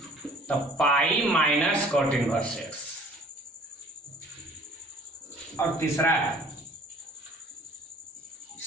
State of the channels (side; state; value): both; normal; correlation 0.52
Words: तब pi minus cot inverse x। और तीसरा है